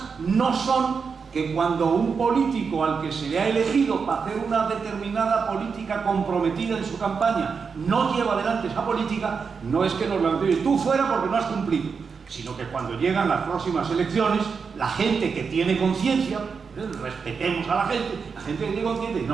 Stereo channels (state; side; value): quieter; left; 5.6 dB